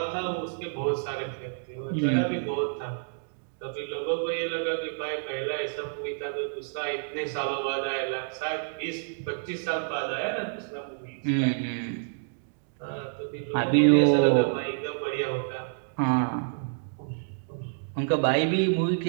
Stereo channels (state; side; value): silent; left; digital silence